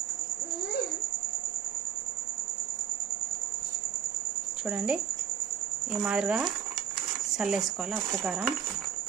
చూడండి ఈ మాదిరిగా చల్లేసుకోవాలా ఉప్పు కారం.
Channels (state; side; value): quieter; left; 8.1 dB